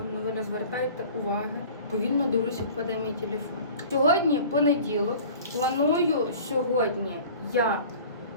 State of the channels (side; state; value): both; inverted; correlation -0.44